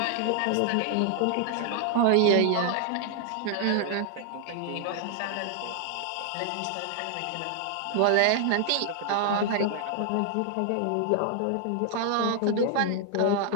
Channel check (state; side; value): different; both; correlation 0.00